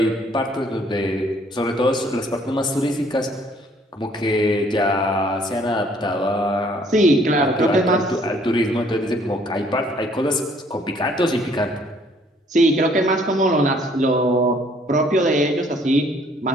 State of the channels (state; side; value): normal; both; correlation 0.62